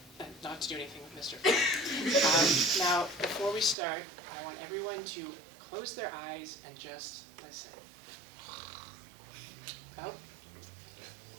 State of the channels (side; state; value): left; drops out; at 3.8 s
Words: not to do anything with Mr. Flow. Now, before we start, I want everyone to close their eyes and just listen. Oh,